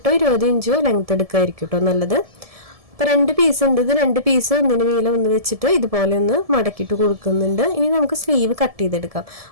20 ഇഞ്ചോ ലെങ്ത് എടുക്കായിരിക്കും കേട്ടോ നല്ലത്. അപ്പോൾ 2 പീസ് ഉണ്ട്. ഇത് 2 പീസ് ഒന്നിന് നീളം ഒന്ന് വെച്ചിട്ട് ഇതുപോലെ ഒന്ന് മടക്കിയിട്ട് കൊടുക്കുന്നുണ്ട്. ഇനി നമുക്ക് സ്ലീവ് കട്ട് ചെയ്തെടുക്കാം.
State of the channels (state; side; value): late; left; 1.7 ms